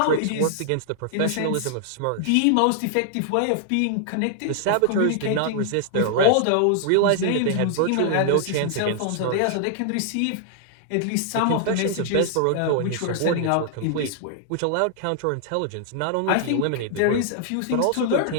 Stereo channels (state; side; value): different; both; correlation -0.01